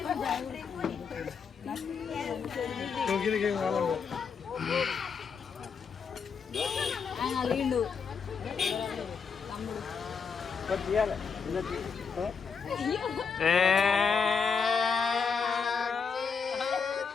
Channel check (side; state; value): right; quieter; 5.9 dB